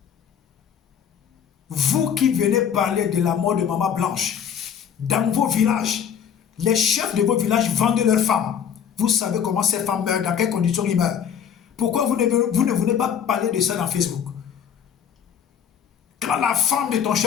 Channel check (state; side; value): quieter; right; 8.1 dB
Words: Vous qui venez parler de la mort de Maman Blanche, dans vos villages, les chefs de vos villages vendent leurs femmes. Vous savez comment ces femmes meurent, dans quelles conditions ils meurent. Pourquoi vous ne venez pas parler de ça dans Facebook? Quand la femme de ton